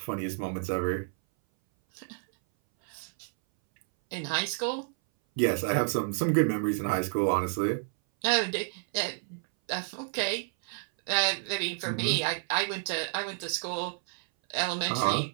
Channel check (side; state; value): left; silent; 58 dB below the other